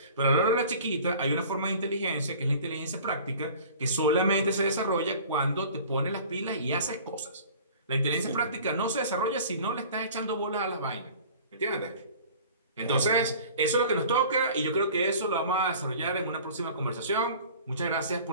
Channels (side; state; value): both; inverted; correlation -0.45